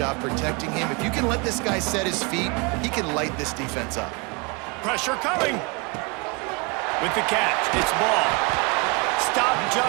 protecting him. If you can let this guy set his feet, he can light this defense up. Pressure coming. With the catch, it's ball. Stopped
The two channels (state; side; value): quieter; left; 29.7 dB